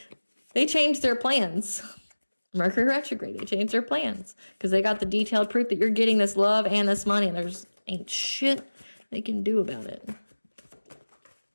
changed their plans. Mercury retrograde. They changed their plans because they got the detailed proof that you're getting this love and this money, and there's ain't shit they can do about it.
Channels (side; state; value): both; inverted; correlation -1.00